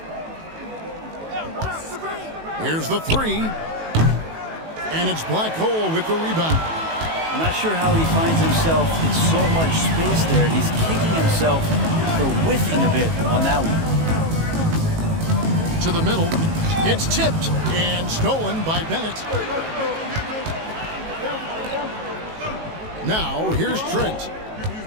Here's the 3. And it's Black Hole with the rebound. I'm not sure how he finds himself in so much space there. He's kicking himself for whiffing a bit on that one. To the middle. It's tipped and stolen by Bennett. Now here's Trent.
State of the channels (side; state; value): left; late; 18 ms